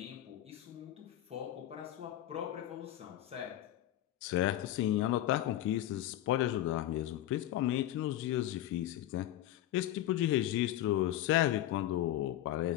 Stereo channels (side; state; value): right; quieter; 13.4 dB